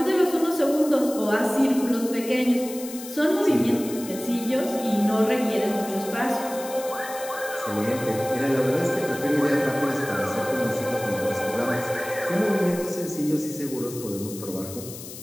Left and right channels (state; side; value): noise; left; hiss, 13 dB below the sound